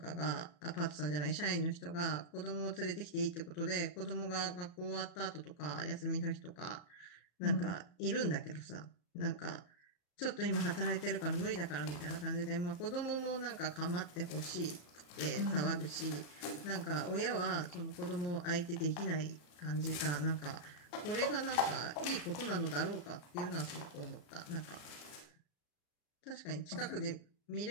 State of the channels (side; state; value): right; late; 34 ms